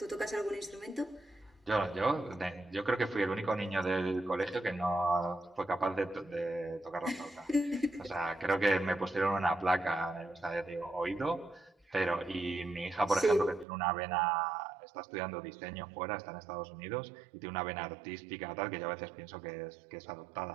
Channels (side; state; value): left; drops out; at 13.7 s